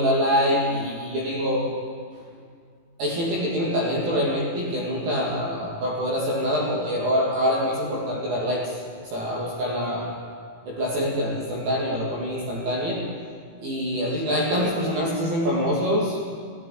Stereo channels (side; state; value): left; late; 18 ms